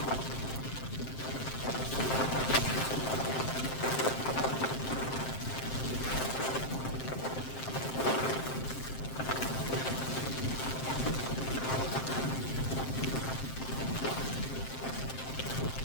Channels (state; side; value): late; right; 7.6 ms